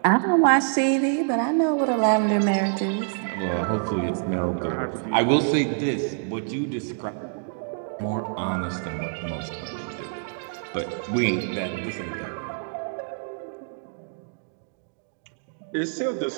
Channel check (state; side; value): silent; left; digital silence